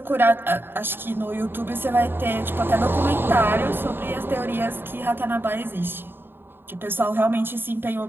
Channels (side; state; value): left; late; 0.10 ms